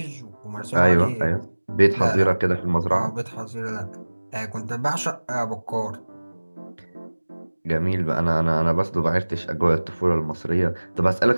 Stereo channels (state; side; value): inverted; both; correlation -1.00